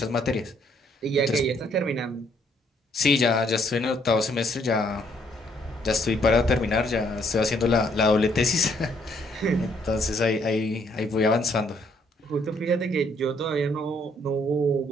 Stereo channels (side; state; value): both; normal; correlation 0.68